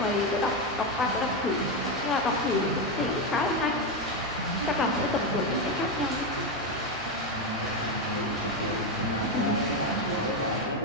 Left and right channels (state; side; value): normal; both; correlation 0.10